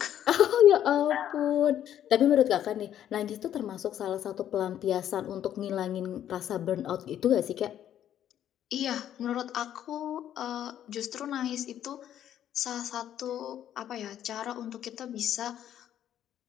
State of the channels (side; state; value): right; quieter; 10.7 dB